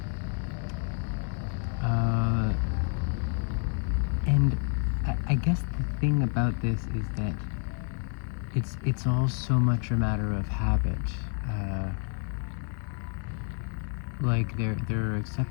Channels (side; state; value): right; quieter; 38.8 dB